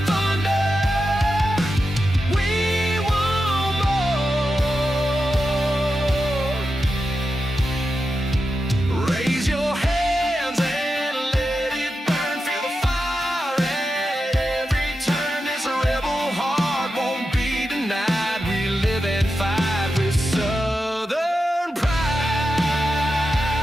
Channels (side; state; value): both; normal; correlation 0.90